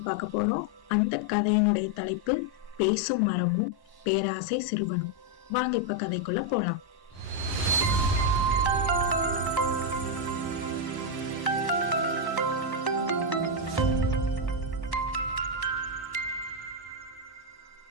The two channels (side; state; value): right; late; 1.1 ms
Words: பார்க்க போறோம். அந்த கதையினுடைய தலைப்பு பேசும் மரமும் பேராசை சிறுவனும். வாங்க இப்ப கதைக்குள்ள போலாம்.